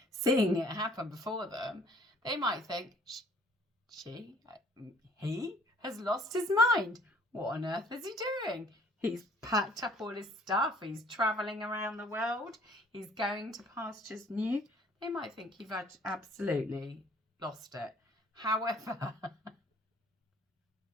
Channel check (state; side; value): normal; both; correlation 0.57